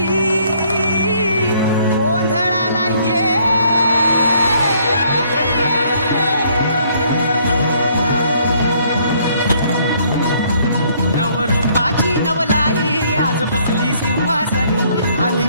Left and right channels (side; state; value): both; inverted; correlation -0.64